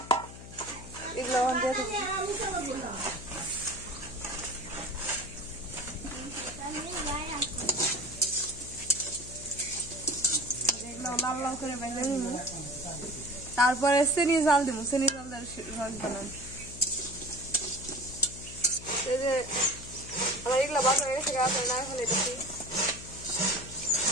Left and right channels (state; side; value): noise; left; hum, 14 dB below the sound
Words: এগুলো লাল লাল করে ভেজে নিব তারপরে চিনি জাল দিব চিনি জাল রস বানান এই যে আমার এগুলো বাসা গেছে আপনার না এখন এটা